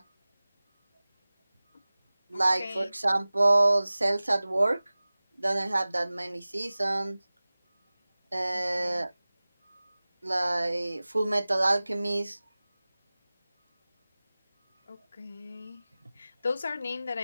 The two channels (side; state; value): both; inverted; correlation -0.98